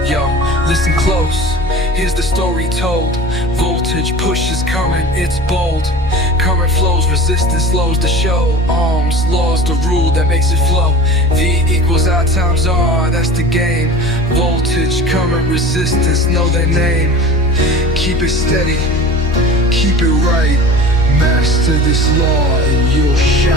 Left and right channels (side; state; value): left; noise; hum, 12 dB below the sound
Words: Yo, listen close, here's the story told. Voltage pushes current, it's bold. Current flows, resistance slows the show. Ohms, laws, the rule that makes it flow. V equals I times R, that's the game. Voltage, current, resistance, know their name. Keep it steady, keep it right. Master this law and you'll